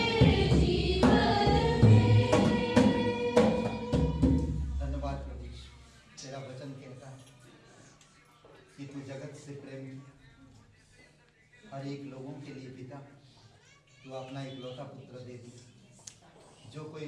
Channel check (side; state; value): both; identical; correlation 1.00